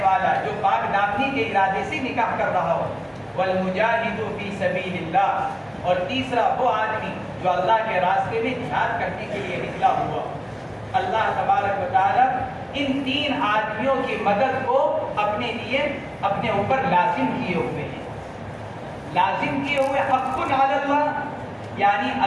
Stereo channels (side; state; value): both; identical; correlation 1.00